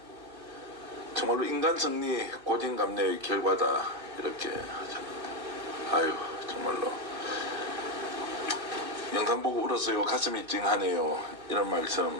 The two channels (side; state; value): left; late; 2.7 ms